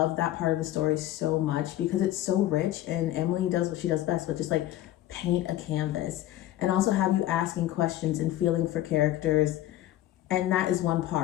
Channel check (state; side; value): quieter; right; 13.9 dB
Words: that part of the story so much because it's so rich, and Emily does what she does best, but just like paint a canvas and also have you asking questions and feeling for characters. And that is one